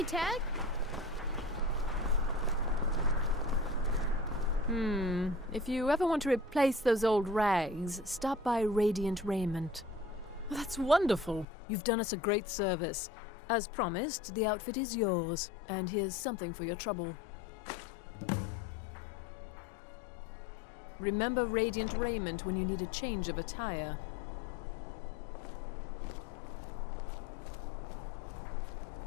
tag? If you ever want to replace those old rags, stop by Radiant Raiment. Well, that's wonderful. You've done us a great service. As promised, the outfit is yours, and here's something for your trouble. Remember Radiant Raiment when you need a change of attire.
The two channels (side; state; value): right; drops out; at 11.5 s